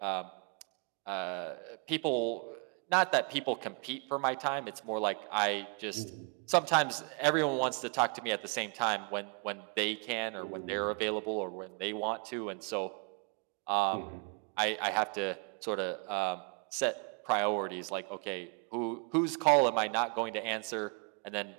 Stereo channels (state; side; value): quieter; left; 37.8 dB